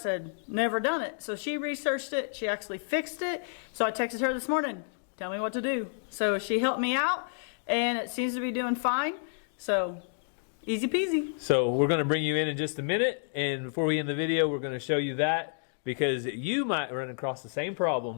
never done it. So she researched it, she actually fixed it. So I texted her this morning, tell me what to do. So she helped me out, and it seems to be doing fine. So easy peasy. So we're going to bring you in just a minute, and before we end the video, we're going to show you that because you might run across the same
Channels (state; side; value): silent; right; digital silence